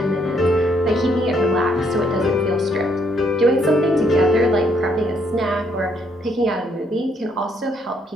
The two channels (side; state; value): both; normal; correlation 0.70